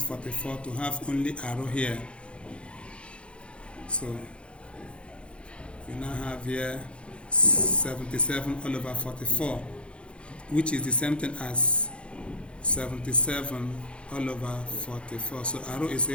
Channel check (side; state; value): right; late; 0.058 ms